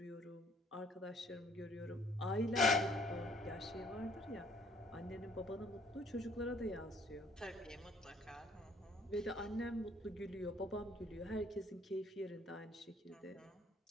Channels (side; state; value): both; normal; correlation 0.61